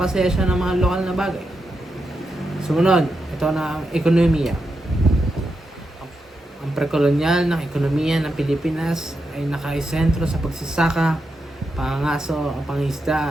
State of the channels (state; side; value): normal; both; correlation 0.86